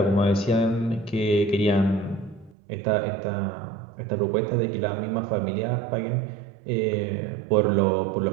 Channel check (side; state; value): left; drops out; at 2.6 s